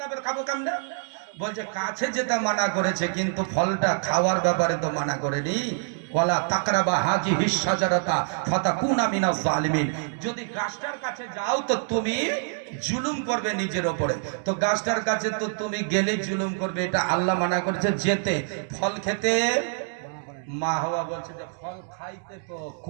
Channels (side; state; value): left; silent; 61 dB below the other